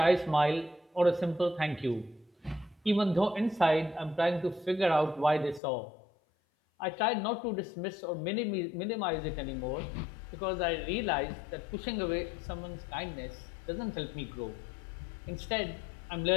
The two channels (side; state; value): right; drops out; at 5.6 s